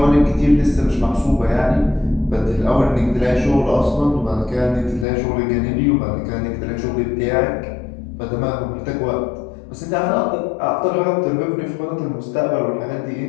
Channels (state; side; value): drops out; right; at 5.1 s